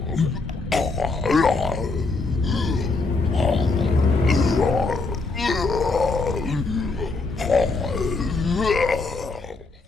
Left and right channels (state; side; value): quieter; right; 3.7 dB